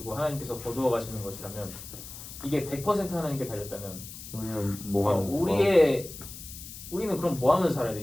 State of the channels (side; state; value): left; noise; hiss, 13 dB below the sound